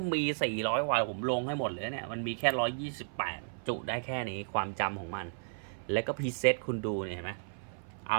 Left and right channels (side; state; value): left; silent; 55 dB below the other